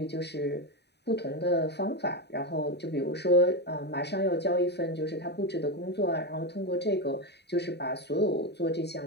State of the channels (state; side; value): late; right; 0.49 ms